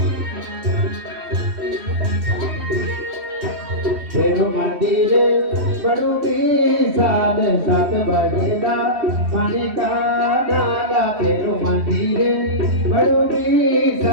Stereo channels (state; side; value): late; left; 3.1 ms